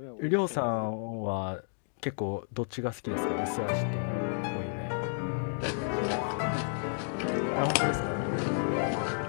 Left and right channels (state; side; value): silent; right; digital silence